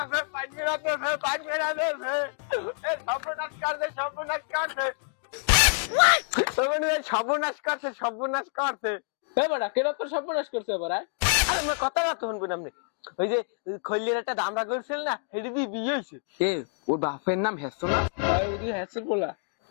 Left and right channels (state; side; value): silent; right; 60 dB below the other